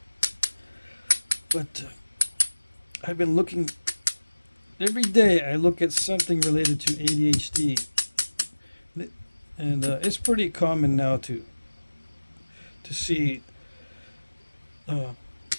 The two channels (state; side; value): inverted; both; correlation -1.00